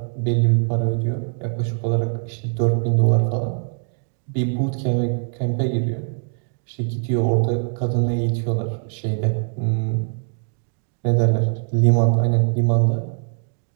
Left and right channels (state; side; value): silent; left; 64 dB below the other